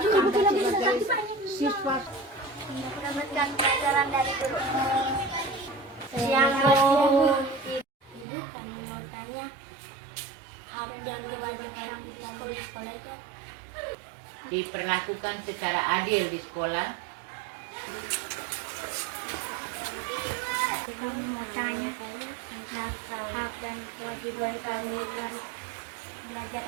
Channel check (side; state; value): left; drops out; at 8.2 s